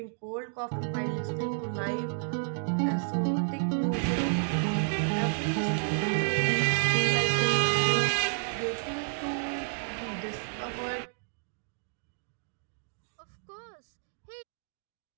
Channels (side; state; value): left; silent; digital silence